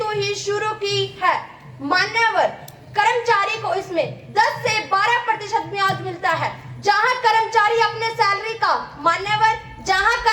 ही शुरू की है। मान्यवर, कर्मचारी को इसमें 10 से 12% ब्याज मिलता है। जहां कर्मचारी अपने सैलरी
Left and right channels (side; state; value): both; identical; correlation 1.00